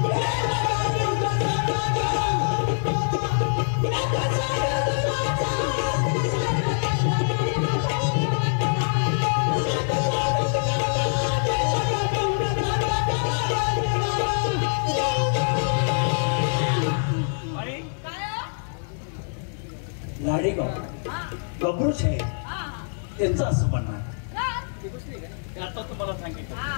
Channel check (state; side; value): silent; right; digital silence